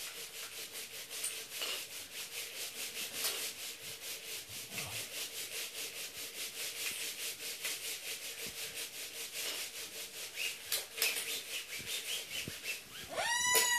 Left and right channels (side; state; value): both; identical; correlation 1.00